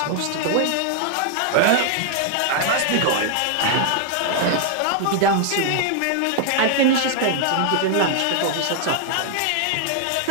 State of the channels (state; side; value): different; both; correlation 0.00